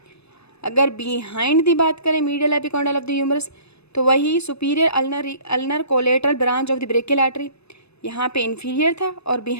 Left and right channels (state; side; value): late; right; 0.79 ms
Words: अगर बिहाइंड दी बात करें medial epicondyle of the humerus तो वही superior ulnar collateral branch of the brachial artery, यहाँ पे इंफीरियर था, और